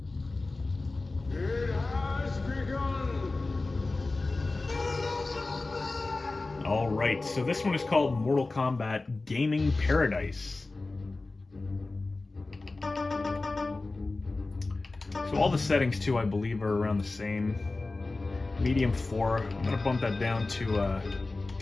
It has begun. All right, so this one is called Mortal Kombat Gaming Paradise. So all the settings too, I believe, are around the same. Medium 4. I'm gonna bump that down to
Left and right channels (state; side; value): quieter; right; 3.3 dB